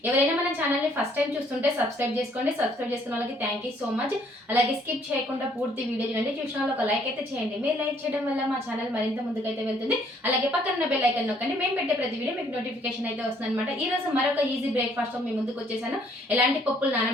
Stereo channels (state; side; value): normal; both; correlation 0.64